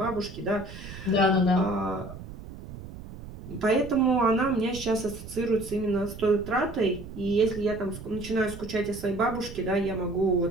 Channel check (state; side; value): noise; right; rumble, 13 dB below the sound